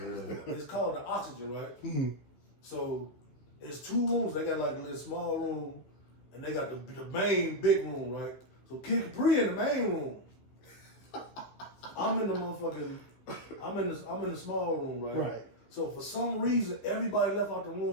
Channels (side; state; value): right; late; 15 ms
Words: It's called the Oxygen, right? So it's two rooms. They got like a little small room, and they got the main big room, right? So Kid Capri in the main room. I'm in the small room, right? Right. So for some reason, everybody left out the